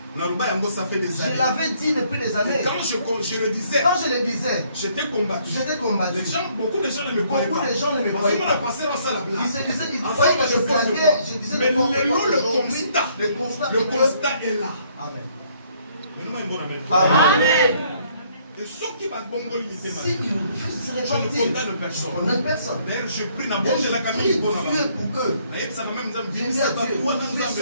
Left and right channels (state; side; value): inverted; both; correlation -0.66